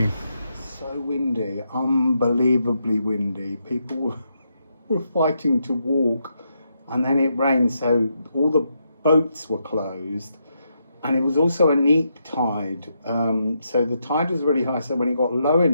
So windy, unbelievably windy. People were fighting to walk, and then it rained, so all the boats were closed. And it was also a neap tide, so the tide was really high, so when it got low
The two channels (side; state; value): both; inverted; correlation -0.81